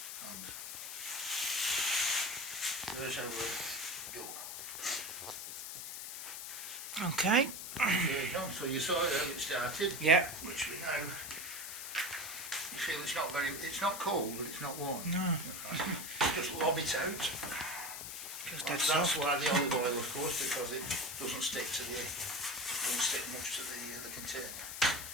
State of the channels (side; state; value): left; noise; hiss, 7 dB below the sound